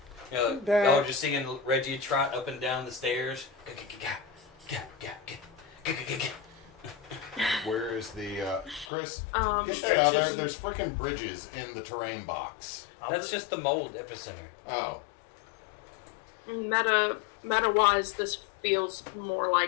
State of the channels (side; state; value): right; drops out; at 8.8 s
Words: You know, That- y'all are just seeing Reggie trot up and down the stairs. Where is the Chris? Um, Get that out of there. There's freaking bridges in the terrain box. That's just the mold epicenter. Oh, meta wise, this feels more